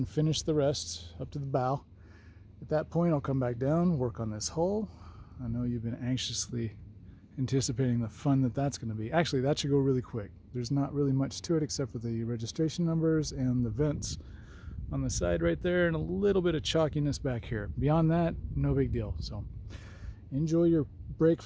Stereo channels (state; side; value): identical; both; correlation 1.00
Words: finish the rest up to the bow. At that point, I'll come back down, work on this hull. I know you've been anxiously anticipating the fun that that's going to be. Actually, that should go really quick. There's not really much to it except for the registration numbers and the vents on the side right there and a little bit of chalkiness back here. Beyond that, no big deal. So enjoy your break